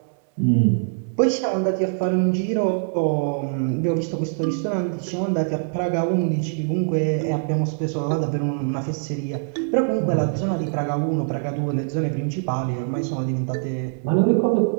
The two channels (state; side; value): silent; left; 63 dB below the other